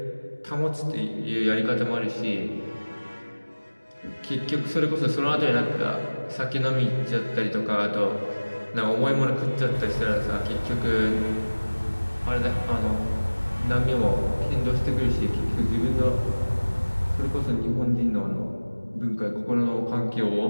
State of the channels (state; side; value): inverted; both; correlation -1.00